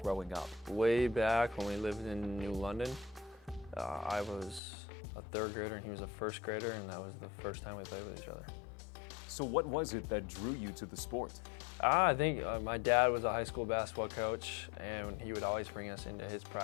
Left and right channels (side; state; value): right; drops out; at 4.6 s